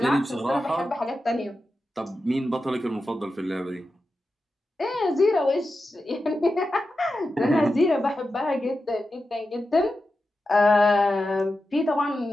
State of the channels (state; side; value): normal; both; correlation 0.90